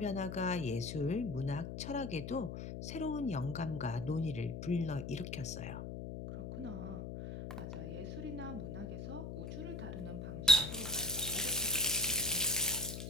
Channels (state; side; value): noise; left; hum, 6 dB below the sound